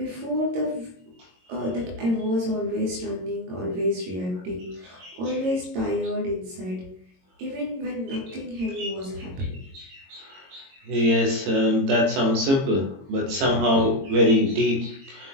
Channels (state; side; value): late; left; 22 ms